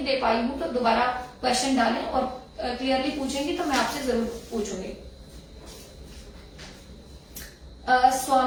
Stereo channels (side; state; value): both; identical; correlation 1.00